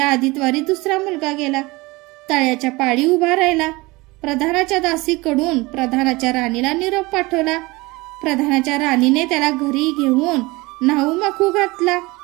आदितवारी दुसरा मुलगा गेला. तळ्याच्या पाळी उभा राहिला. प्रधानाच्या दासीकडून प्रधानाच्या राणीला निरोप पाठवला. प्रधानाच्या राणीने त्याला घरी घेऊन न्हाऊ माखू घातला,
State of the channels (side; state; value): left; quieter; 22.7 dB